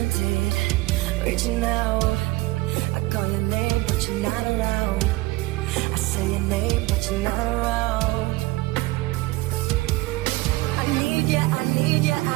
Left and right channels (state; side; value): quieter; left; 20.5 dB